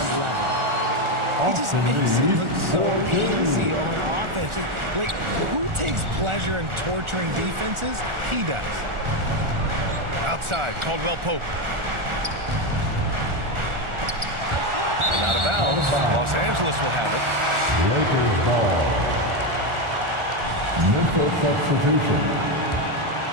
level. He just makes it look so easy on offense. Like, who takes pleasure in torturing defenses? He does. Outside, Caldwell Pope. And out of bounds, Los Angeles will have it. Lakers ball. Memphis substitution.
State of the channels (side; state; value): left; late; 1.4 ms